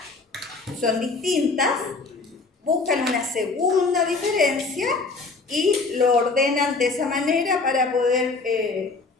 Son distintas. Buscan una segunda diferencia y lo ordenan de esa manera para poder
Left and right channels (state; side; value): quieter; right; 3.9 dB